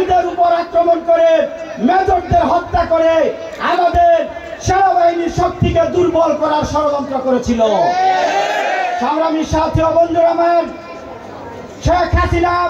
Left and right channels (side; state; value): both; identical; correlation 1.00